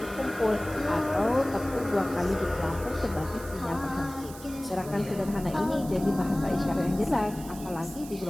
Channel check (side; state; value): right; noise; hiss, 16 dB below the sound